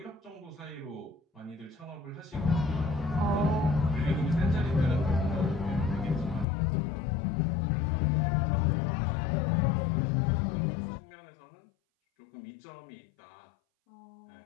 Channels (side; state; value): right; drops out; at 6.5 s